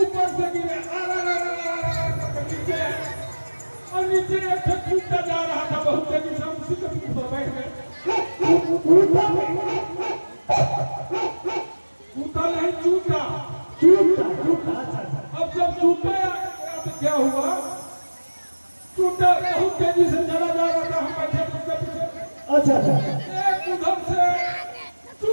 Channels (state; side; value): inverted; both; correlation -1.00